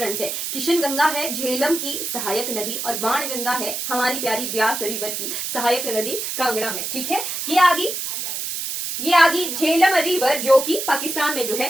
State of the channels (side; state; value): right; noise; hiss, 4 dB below the sound